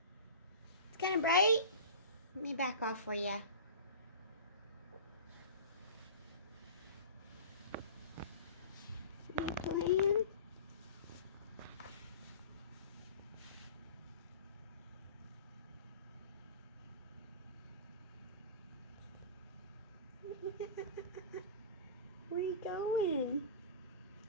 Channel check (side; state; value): both; inverted; correlation -0.35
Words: It's kind of bright. Let me back off for you. You playing? Where are you going?